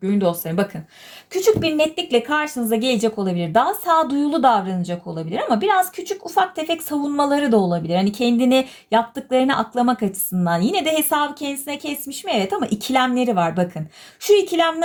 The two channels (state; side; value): identical; both; correlation 1.00